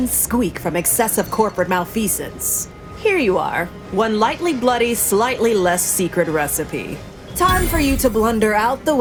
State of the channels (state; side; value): identical; both; correlation 1.00